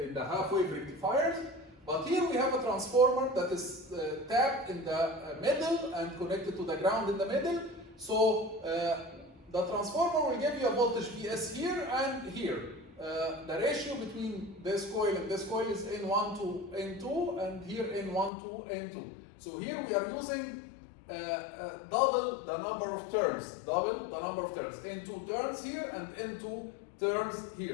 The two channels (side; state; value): right; drops out; at 18.3 s